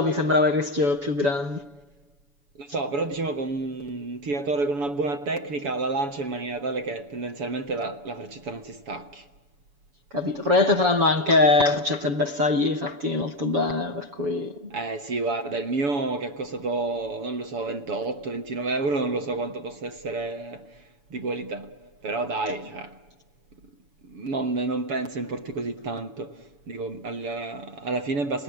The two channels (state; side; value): late; left; 7.0 ms